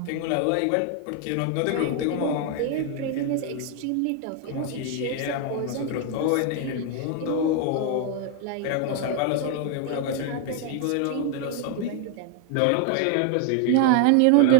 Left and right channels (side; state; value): both; different; correlation 0.00